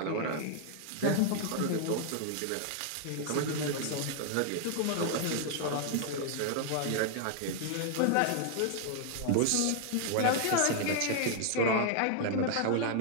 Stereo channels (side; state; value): both; different; correlation 0.00